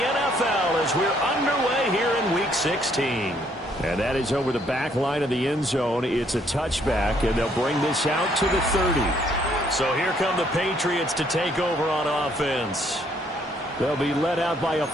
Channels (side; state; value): both; normal; correlation 0.67